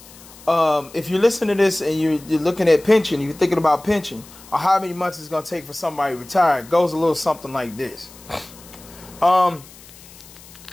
if you're listening to this and you're looking at pension, you're thinking about pension, or how many months it's going to take for somebody to retire, it goes a little something like this. So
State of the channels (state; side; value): noise; left; hiss, 21 dB below the sound